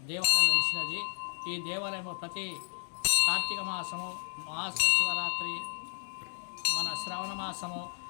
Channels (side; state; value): right; silent; digital silence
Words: దేవాలయం వెలిసినది. ఈ దేవాలయము ప్రతి కార్తీక మాసము, మహాశివరాత్రి, మన శ్రవణ మాసము,